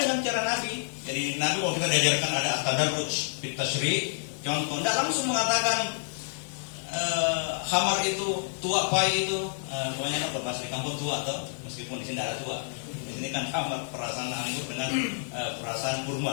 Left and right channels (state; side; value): silent; right; digital silence